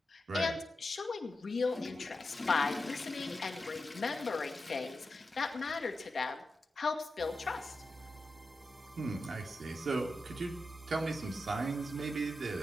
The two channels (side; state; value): both; normal; correlation 0.90